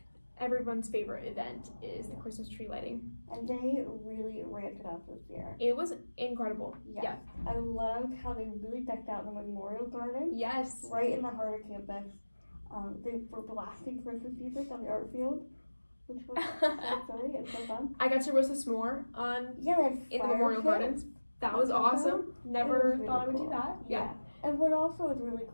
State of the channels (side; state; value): both; inverted; correlation -1.00